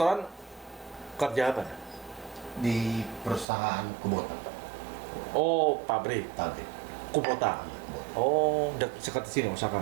kerja apa? Di perusahaan Kubota. Oh, pabrik Pabrik. Kubota. Oh, dekat di sini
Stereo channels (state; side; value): drops out; left; at 3.5 s